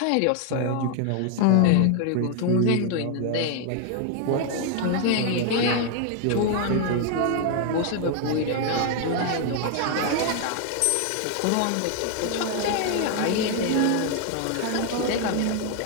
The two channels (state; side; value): different; both; correlation 0.00